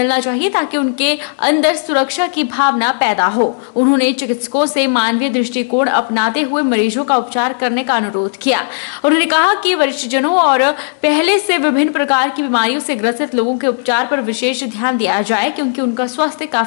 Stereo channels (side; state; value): right; silent; digital silence